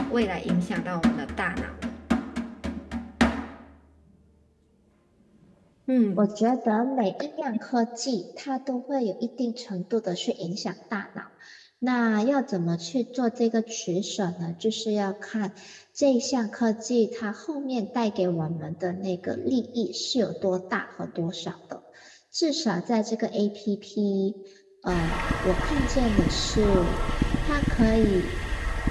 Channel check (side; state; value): both; identical; correlation 1.00